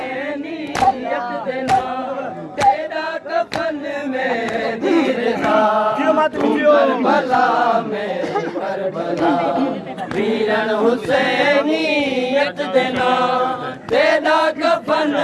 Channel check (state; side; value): identical; both; correlation 1.00